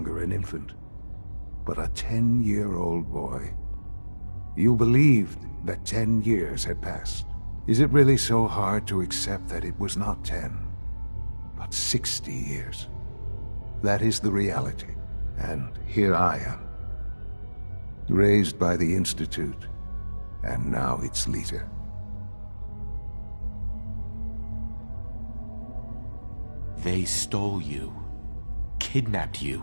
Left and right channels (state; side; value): inverted; both; correlation -1.00